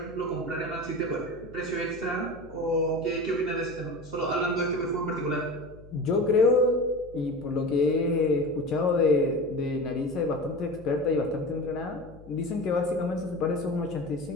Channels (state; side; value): noise; left; hum, 20 dB below the sound